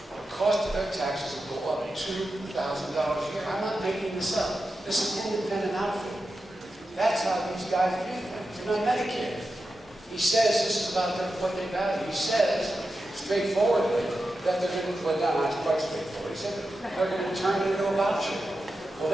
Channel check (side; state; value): both; normal; correlation 0.91